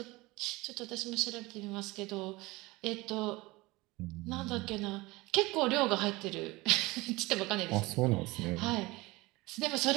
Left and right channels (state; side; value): quieter; left; 21.8 dB